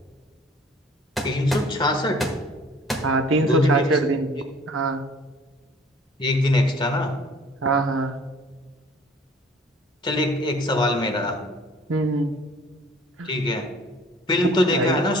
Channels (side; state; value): both; normal; correlation 0.52